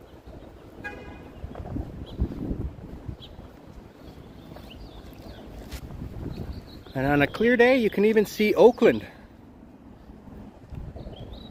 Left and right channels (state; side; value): identical; both; correlation 1.00